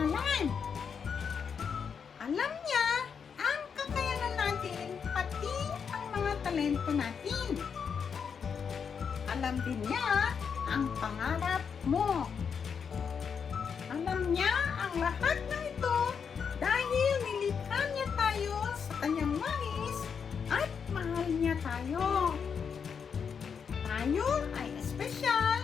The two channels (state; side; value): quieter; right; 6.6 dB